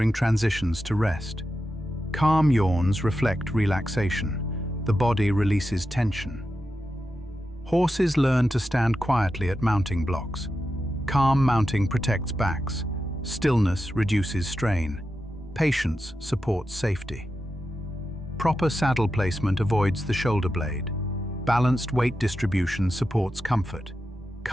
transitions to rest. Calm yawns reflect relaxation. The body releases tension. Horses learn to stand quietly at mounting blocks. Calm mounting protects backs. Stillness reduces strain. Patience supports safety. Proper saddle placement avoids the shoulder blade. Balanced weight distribution supports comfort.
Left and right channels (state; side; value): normal; both; correlation 0.89